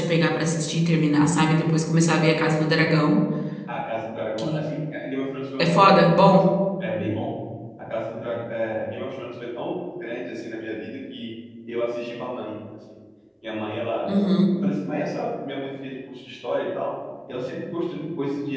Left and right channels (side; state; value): both; identical; correlation 1.00